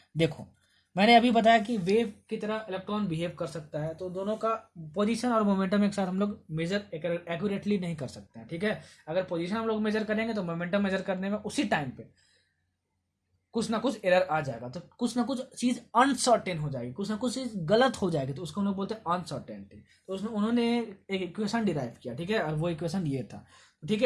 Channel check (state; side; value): identical; both; correlation 1.00